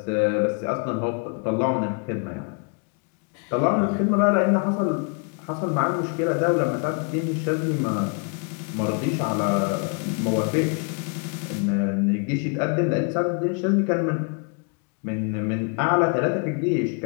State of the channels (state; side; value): quieter; right; 37.6 dB